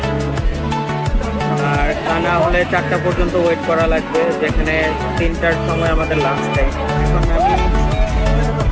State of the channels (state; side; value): identical; both; correlation 1.00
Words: আর তা না হলে 4টা পর্যন্ত ওয়েট করা লাগবে, যেখানে 3টার সময় আমাদের লাঞ্চ টাইম। এখন আমি